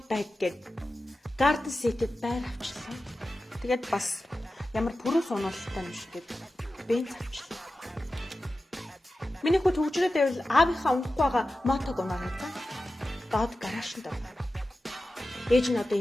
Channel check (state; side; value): normal; both; correlation 0.94